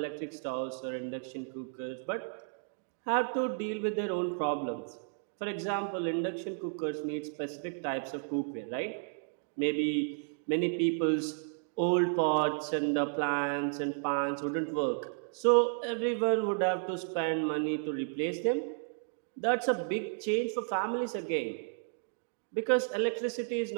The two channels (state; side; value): silent; left; digital silence